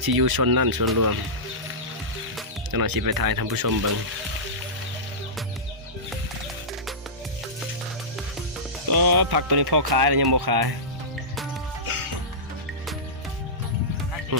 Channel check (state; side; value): normal; both; correlation -0.17